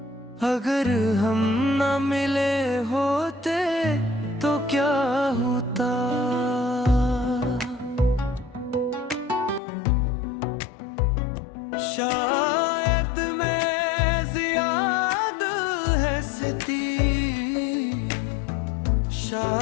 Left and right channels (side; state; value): right; drops out; at 9.6 s